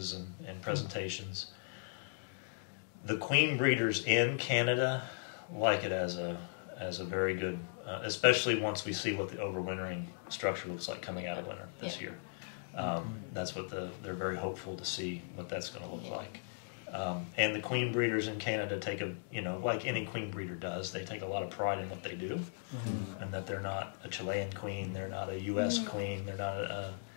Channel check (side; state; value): right; silent; digital silence